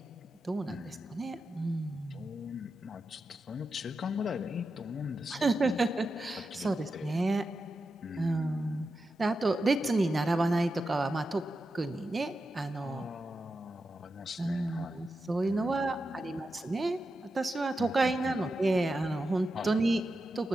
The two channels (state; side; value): normal; both; correlation 0.89